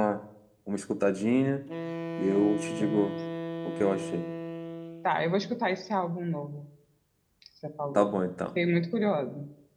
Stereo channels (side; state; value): both; identical; correlation 1.00